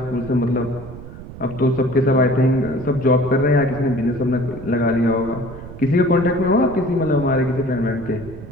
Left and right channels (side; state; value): right; noise; rumble, 14 dB below the sound